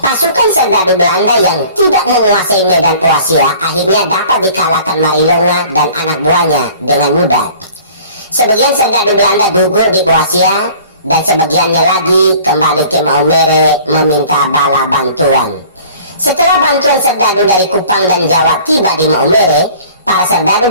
Pasukan serdadu Belanda yang tidak menguasai medan Boasia akhirnya dapat dikalahkan Marilonga dan anak buahnya dengan mudah. Sebagian serdadu Belanda gugur di Boasia dan sebagiannya lagi kembali ke Maumere meminta bala bantuan. Setelah bantuan serdadu dari Kupang dan Jawa tiba di Maumere, para serdadu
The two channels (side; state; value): both; inverted; correlation -0.49